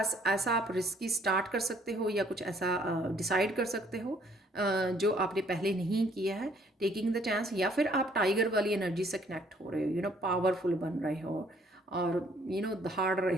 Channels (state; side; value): normal; both; correlation 0.62